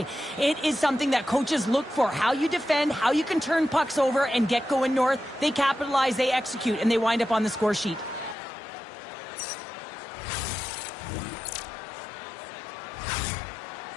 It is something that coaches look for. How you defend, how you can turn pucks over and get going north. They capitalize, they execute, and they wind up on the score sheet.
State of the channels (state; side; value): drops out; right; at 8.3 s